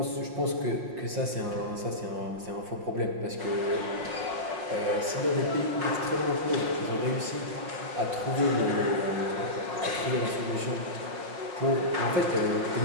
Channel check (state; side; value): late; left; 5.5 ms